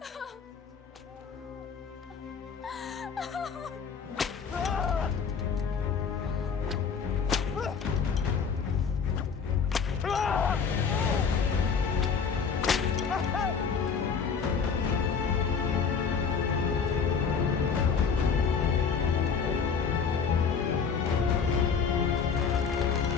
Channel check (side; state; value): right; quieter; 6.1 dB